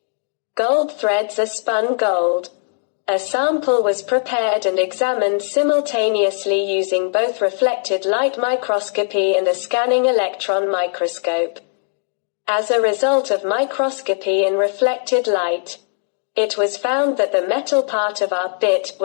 Gold threads are spun gold. A sample was prepared and examined simultaneously using both reflected light microscopy and a scanning electron microscope. As a result of microscopy in reflected light, it was found that the metal part of our bit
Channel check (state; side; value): silent; right; digital silence